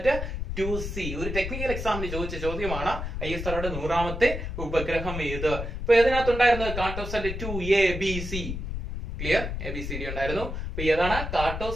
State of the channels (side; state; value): left; noise; rumble, 5 dB below the sound